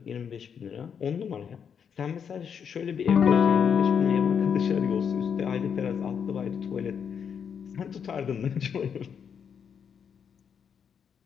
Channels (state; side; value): quieter; right; 7.3 dB